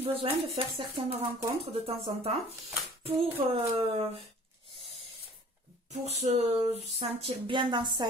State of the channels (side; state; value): both; normal; correlation 0.50